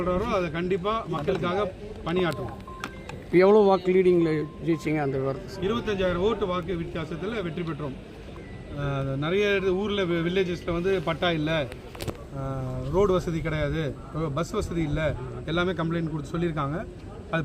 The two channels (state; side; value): identical; both; correlation 1.00